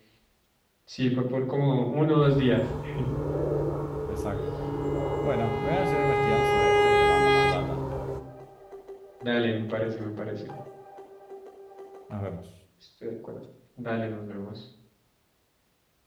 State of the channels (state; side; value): identical; both; correlation 1.00